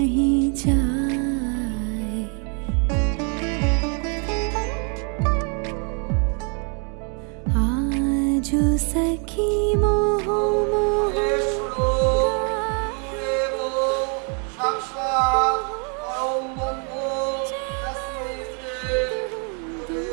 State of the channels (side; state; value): left; quieter; 39.2 dB